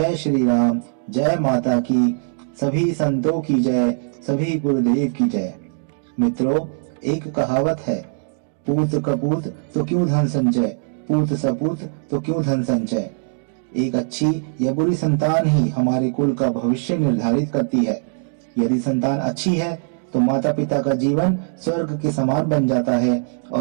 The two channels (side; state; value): left; silent; digital silence